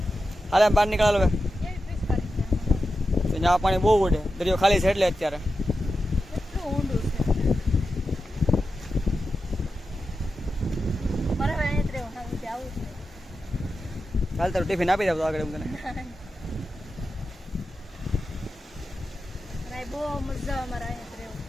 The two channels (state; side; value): normal; both; correlation 0.91